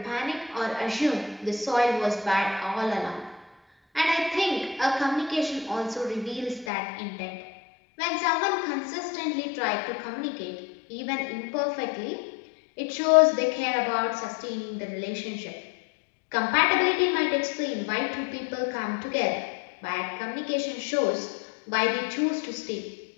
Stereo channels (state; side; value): drops out; right; at 6.7 s